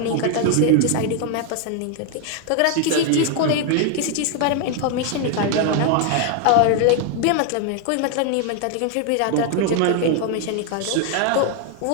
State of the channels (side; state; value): both; different; correlation 0.00